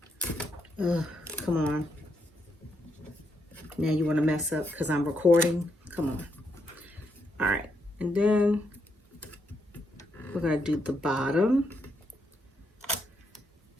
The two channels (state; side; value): normal; both; correlation 0.79